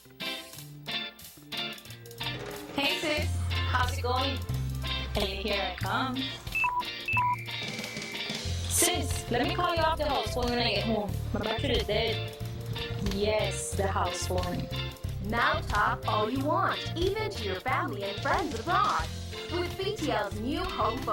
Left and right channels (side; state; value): both; identical; correlation 1.00